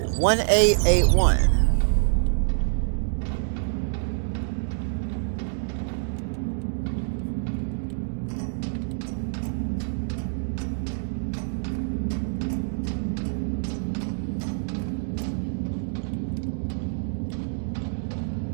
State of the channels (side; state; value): left; silent; digital silence